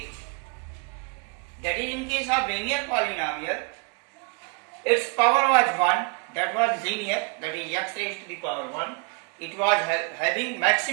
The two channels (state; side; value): quieter; left; 35.9 dB